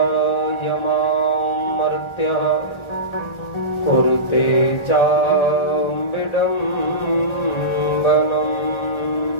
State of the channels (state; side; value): late; right; 1.4 ms